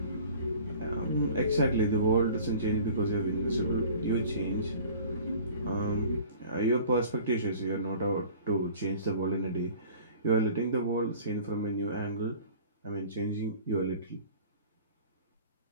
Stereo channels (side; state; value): both; inverted; correlation -0.46